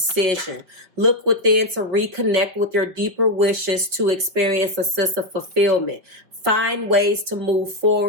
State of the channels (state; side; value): late; left; 5.3 ms